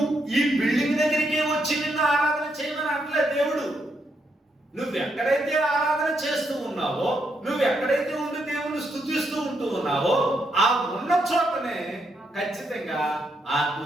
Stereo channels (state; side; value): normal; both; correlation 0.78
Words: ఈ బిల్డింగ్ దగ్గరికి వచ్చి నిన్ను ఆరాధన చేయమని అంటే దేవుడు, నువ్వు ఎక్కడైతే ఆరాధన చేస్తూ ఉన్నావో, నువ్వు ఎక్కడైతే ఉండి దేవుని స్తుతిస్తూ ఉంటూ ఉన్నావో, ఆ ఉన్న చోటనే ఖచ్చితంగా